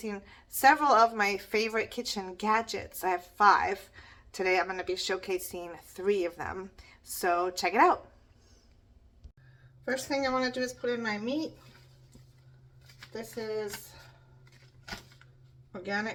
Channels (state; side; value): identical; both; correlation 1.00